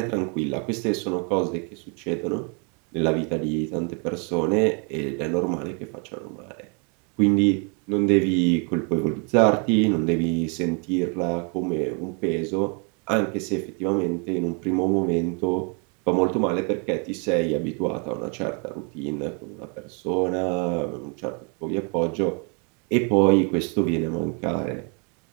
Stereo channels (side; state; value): left; quieter; 36.3 dB